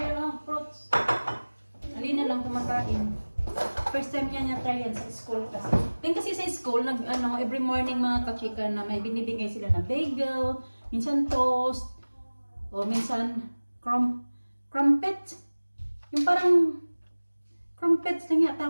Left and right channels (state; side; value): inverted; both; correlation -1.00